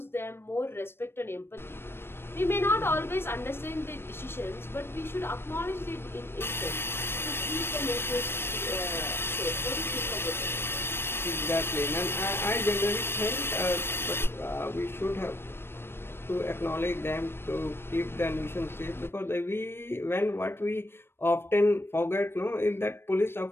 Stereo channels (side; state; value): right; late; 0.11 ms